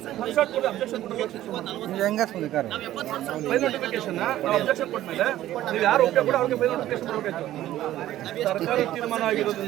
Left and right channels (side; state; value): left; quieter; 13.8 dB